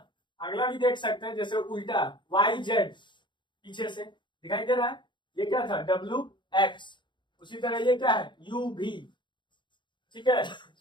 अगला भी देख सकते हैं, जैसे उल्टा YZ पीछे से दिखाई दे रहा है, ये क्या था? WX। उसी तरह ये क्या है? UV, ठीक है।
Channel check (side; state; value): right; late; 0.23 ms